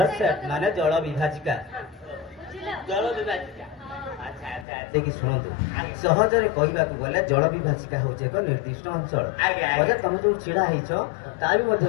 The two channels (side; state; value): right; drops out; at 4.7 s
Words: सेट माने जल विभाजिका जल विभाजिका। देखि शुणु सहजरे कहवाक गले जल विभाजिका हूँ एक निर्दिष्ट अंचल अजा तुम जो छिड़ा होइछ ता भी मध्य